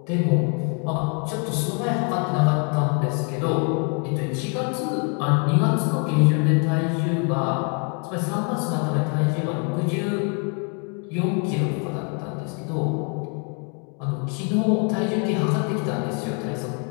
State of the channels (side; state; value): right; quieter; 38.7 dB